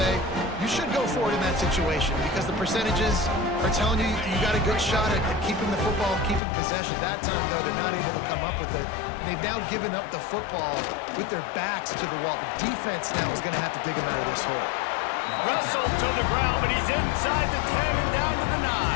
you should go for it in that situation because the percentages are telling you you got a good shot at keeping the football and keeping possession. That time, though, they're not able to come up with it. And they've now given up the football with their backs to the wall. The defense now is going to have to dig them out of this hole. Russell to the ground, but he's inside the 10 and down to the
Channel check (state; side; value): drops out; right; at 6.4 s